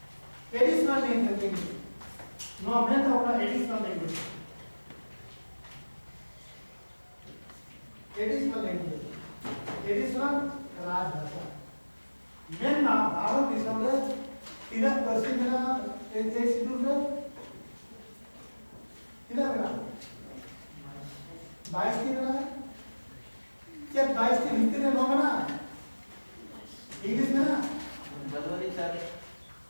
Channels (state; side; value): inverted; both; correlation -1.00